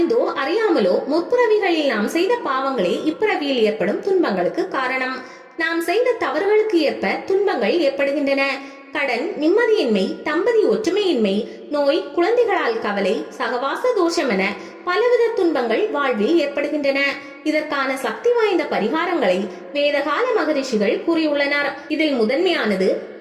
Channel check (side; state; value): both; identical; correlation 1.00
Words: அறியாமலோ முற்பிறவிகளில் நாம் செய்த பாவங்களே இப்பிறவியில் ஏற்படும் துன்பங்களுக்கு காரணம். நாம் செய்த தவறுகளுக்கு ஏற்ப துன்பங்கள் ஏற்படுகின்றன. கடன், நிம்மதியின்மை, தம்பதி ஒற்றுமையின்மை, நோய், குழந்தைகளால் கவலை, சகவாச தோஷம் என பலவித துன்பங்கள் வாழ்வில் ஏற்படுகின்றன. இதற்கான சக்தி வாய்ந்த பரிகாரங்களை வேதகால மகரிஷிகள் கூறியுள்ளனர். இதில் முதன்மையானது